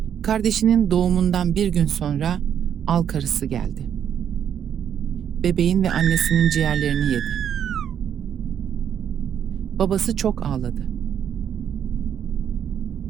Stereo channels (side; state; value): left; quieter; 8.9 dB